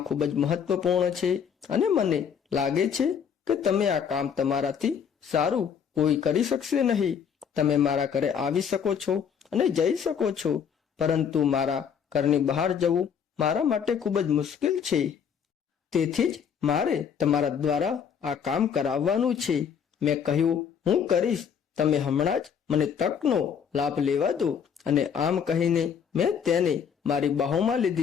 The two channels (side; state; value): right; quieter; 7.5 dB